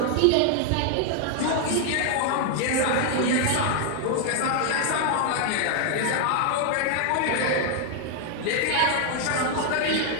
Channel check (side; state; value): both; different; correlation 0.00